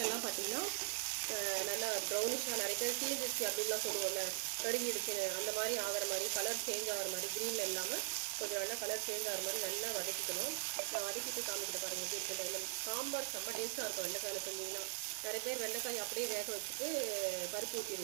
எல்லாம் பார்த்தீங்கன்னா நல்லா ப்ரௌனிஷாக, நிறைய பேர் தீர்ந்துச்சு அப்படின்லாம் சொல்லுவோம்ல, கருகிடுச்சு அந்த மாதிரி ஆகிற மாதிரி, கலர் சேஞ்ச் ஆகிற மாதிரி, க்ரீனில் இல்லாமல் கொஞ்சம் நல்லா கலர் சேஞ்ச் ஆகிற மாதிரி நல்லா வதக்கிக்கணும். நான் வதக்கிட்டு காமிக்கிட்டு பாருங்கள் எப்படி இருக்கும். சாம்பார் செம்ம டேஸ்ட்டாக இருக்கும் வெண்டைக்காயில் செஞ்சிங்கன்னா. நிறைய பேர் வெண்டைக்காய் அப்படியே வேக வச்சுட்டு பருப்பு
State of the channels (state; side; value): silent; left; digital silence